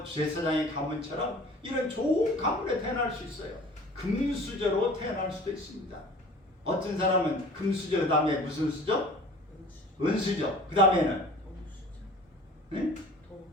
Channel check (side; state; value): both; normal; correlation 0.45